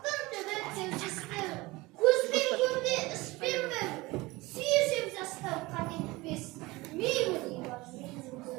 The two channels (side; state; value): left; quieter; 21.6 dB